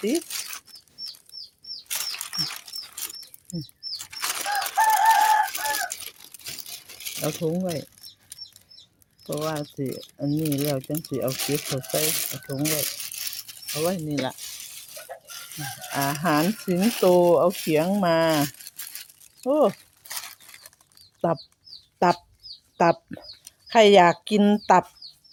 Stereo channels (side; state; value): both; identical; correlation 1.00